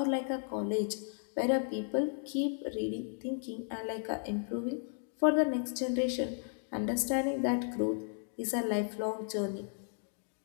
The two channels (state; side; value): silent; right; 55 dB below the other